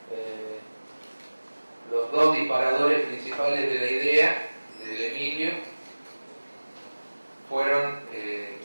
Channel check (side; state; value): both; inverted; correlation -1.00